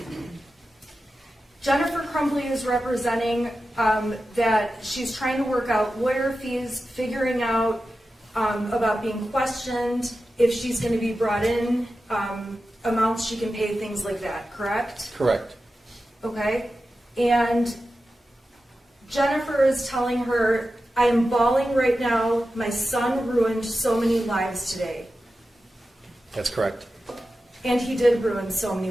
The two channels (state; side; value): normal; both; correlation 0.92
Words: Jennifer Crumbley is representing that she's trying to work out lawyer fees, figuring out about being questioned, if she's gonna be brought in, amounts she can pay, things like that, correct? Correct. Okay, and Jennifer is telling her, I am bawling right now, my son ruined so many lives today. That's correct. And he did ruin so many